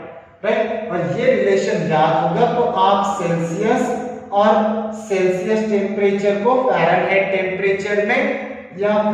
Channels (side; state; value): both; identical; correlation 1.00